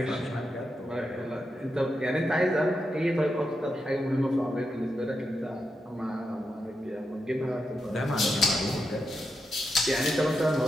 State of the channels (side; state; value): both; normal; correlation 0.86